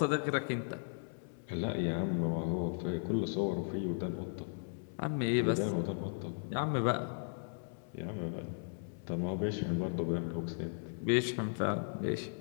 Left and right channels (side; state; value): right; silent; digital silence